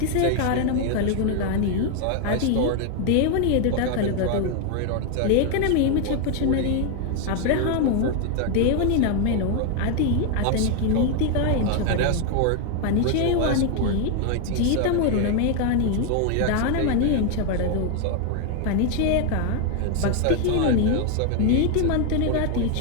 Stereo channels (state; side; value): different; both; correlation 0.00